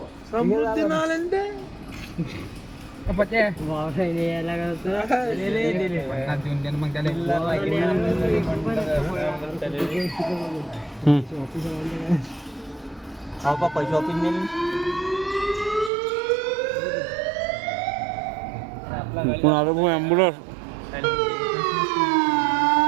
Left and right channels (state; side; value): drops out; left; at 15.9 s